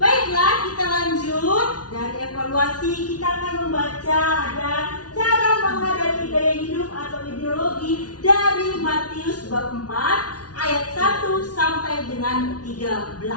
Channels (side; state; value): right; late; 0.69 ms